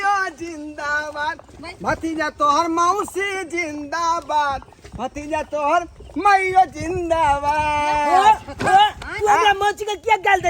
जिंदाबाद, भतीजा तोहर मौसी जिंदाबाद, भतीजा तोहर माइयो जिंदाबाद। तू हमरा मौसी के क्या गाल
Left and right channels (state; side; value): identical; both; correlation 1.00